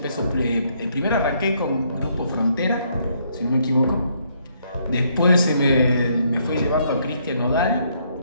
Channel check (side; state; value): both; inverted; correlation -0.71